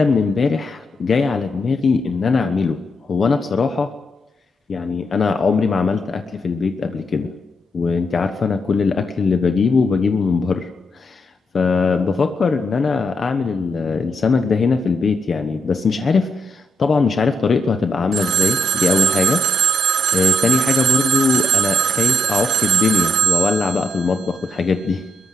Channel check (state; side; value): normal; both; correlation 0.78